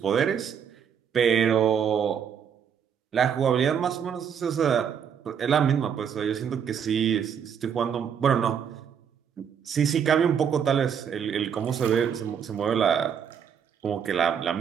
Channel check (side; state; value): left; quieter; 7.8 dB